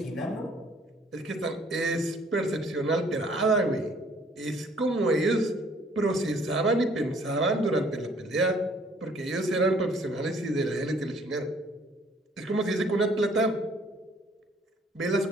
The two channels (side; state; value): both; normal; correlation 0.60